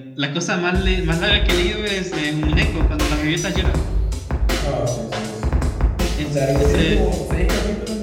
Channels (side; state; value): both; identical; correlation 1.00